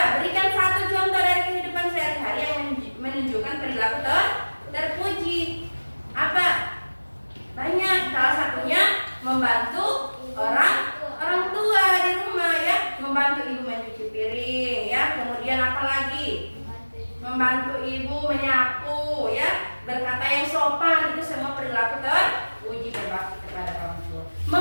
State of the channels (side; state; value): both; inverted; correlation -1.00